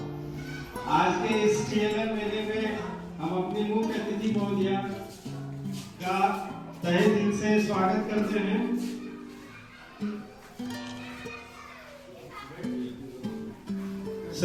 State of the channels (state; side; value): identical; both; correlation 1.00